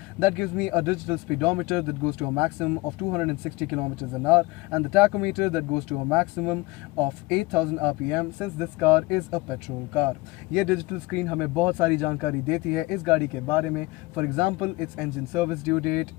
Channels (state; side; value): quieter; right; 21.7 dB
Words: that gives me a digital speedometer that goes to a maximum of 260 kilometers an hour and the tachometer that goes to a maximum of 8000 RPM since this car is a petrol car. ये digital screen हमें बहुत सारी जानकारी देती है इस गाड़ी के बारे में. For example, its engine service due date,